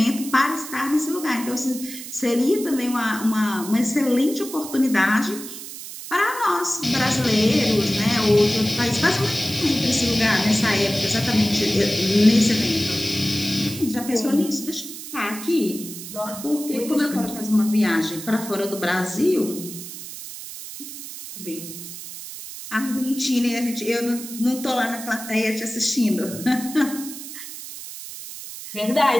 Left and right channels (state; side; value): noise; right; hiss, 11 dB below the sound